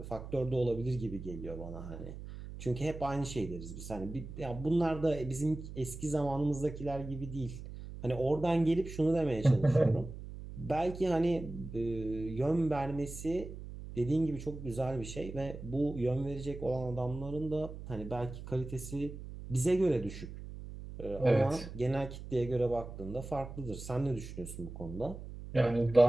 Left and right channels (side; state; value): right; noise; hum, 11 dB below the sound